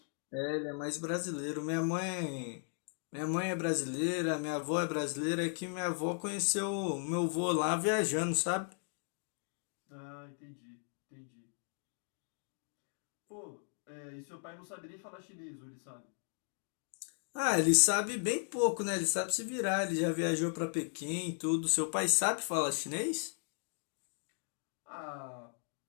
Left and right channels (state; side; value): silent; right; 54 dB below the other